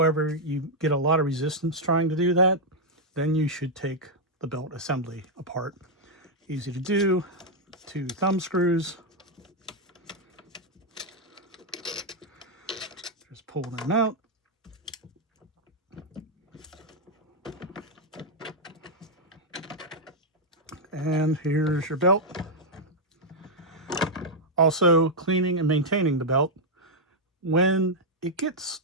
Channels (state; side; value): normal; both; correlation -0.02